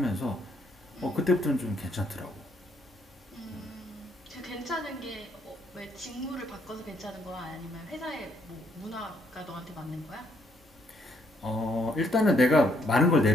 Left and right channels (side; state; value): both; normal; correlation 0.71